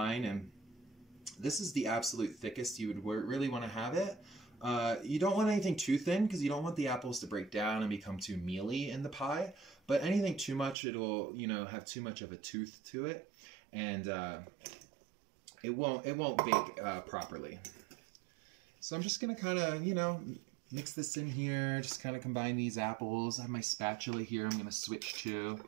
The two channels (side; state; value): left; drops out; at 10.8 s